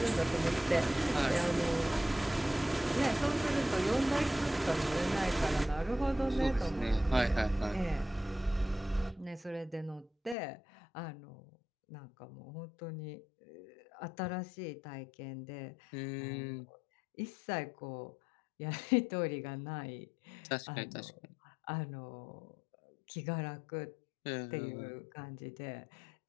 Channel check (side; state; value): right; drops out; at 10.4 s